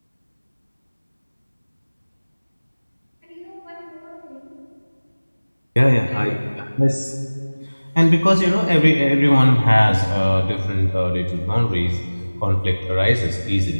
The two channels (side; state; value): both; inverted; correlation -1.00